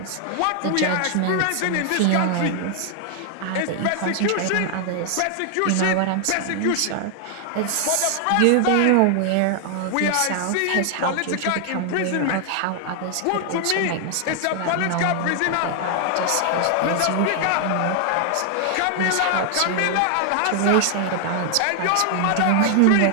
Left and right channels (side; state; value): both; different; correlation 0.00